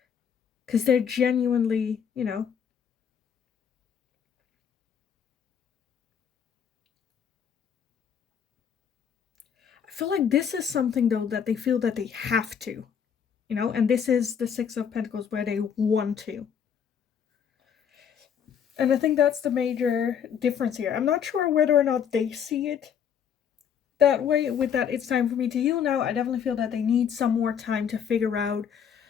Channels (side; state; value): right; quieter; 7.8 dB